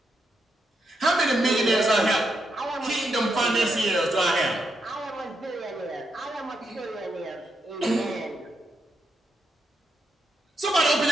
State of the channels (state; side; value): normal; both; correlation 0.82